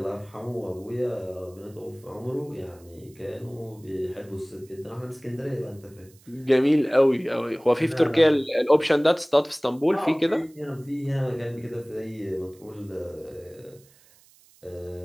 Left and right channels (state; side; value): noise; right; hiss, 28 dB below the sound